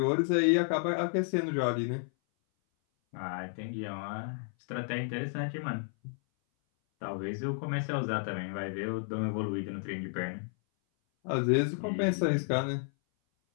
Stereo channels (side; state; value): right; silent; 56 dB below the other